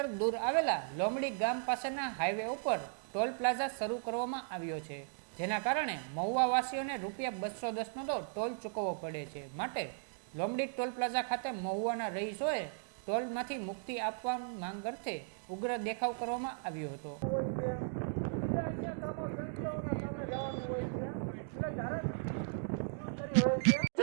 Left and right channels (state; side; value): silent; left; digital silence